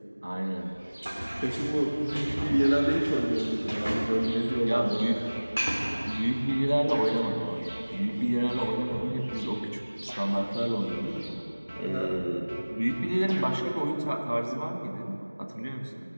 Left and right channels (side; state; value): both; inverted; correlation -1.00